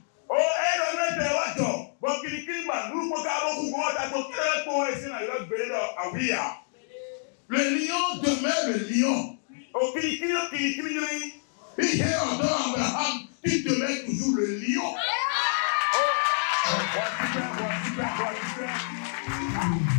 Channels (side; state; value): right; silent; digital silence